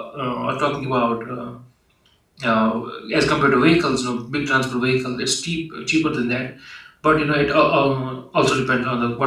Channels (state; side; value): identical; both; correlation 1.00